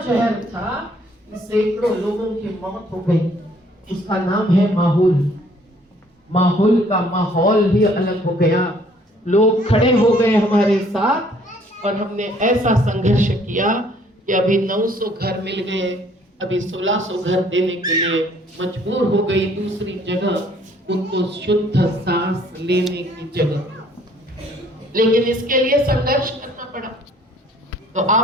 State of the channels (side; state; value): both; normal; correlation 0.60